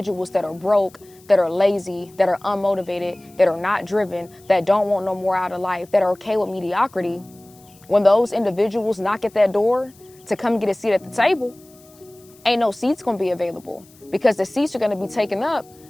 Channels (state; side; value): noise; left; hiss, 27 dB below the sound